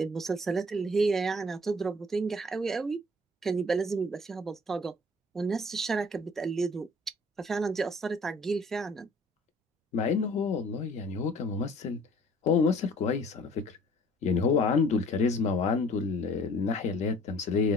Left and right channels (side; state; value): both; normal; correlation 0.53